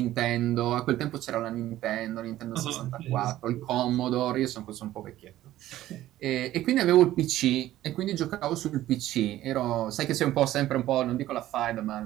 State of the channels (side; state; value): left; quieter; 14.3 dB